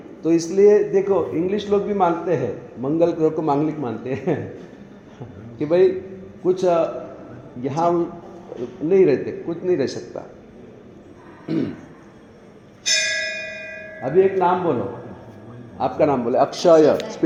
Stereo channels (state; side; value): identical; both; correlation 1.00